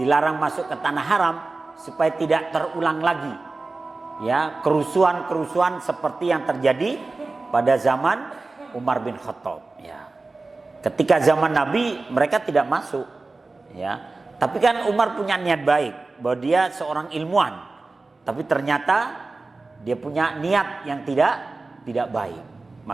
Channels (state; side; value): quieter; left; 3.5 dB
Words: masuk ke tanah haram supaya tidak terulang lagi, ya, kerusuhan-kerusuhan seperti yang terjadi pada zaman Umar bin Khattab, ya. Ketika zaman Nabi mereka tidak masuk, ya. Tapi kan Umar punya niat baik bahwa dia seorang ilmuwan, tapi ternyata dia punya niat yang tidak baik.